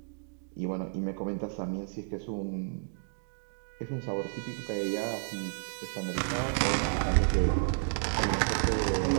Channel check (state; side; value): silent; left; digital silence